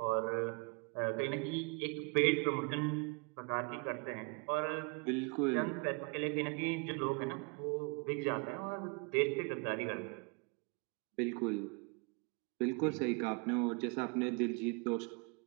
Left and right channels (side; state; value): left; quieter; 32.9 dB